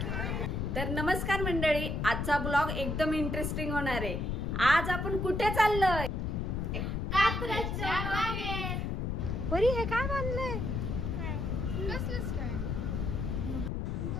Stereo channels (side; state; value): left; noise; rumble, 1 dB below the sound